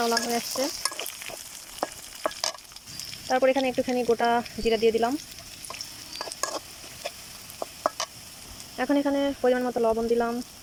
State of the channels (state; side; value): identical; both; correlation 1.00